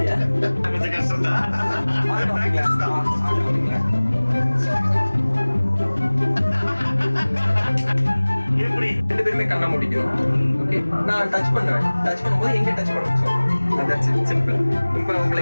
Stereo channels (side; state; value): both; inverted; correlation -1.00